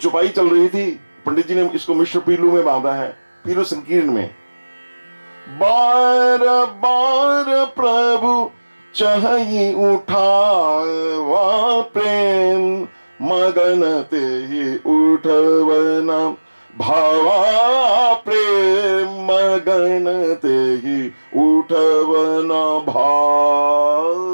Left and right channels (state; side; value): inverted; both; correlation -1.00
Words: चल रही थी, पंडित जी ने इसको मिश्र पीलू में बांधा है, पीलू संकीर्ण में। बार बार प्रभु चाहि उठावा प्रेम, मगन ते ही उठवना भावा प्रेम, मगन ते ही उठवना भावा।